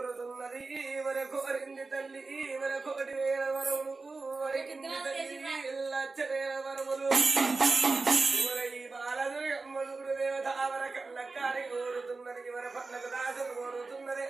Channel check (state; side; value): quieter; left; 3.8 dB